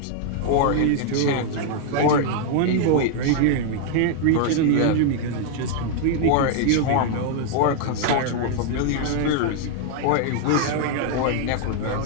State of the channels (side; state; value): both; different; correlation 0.00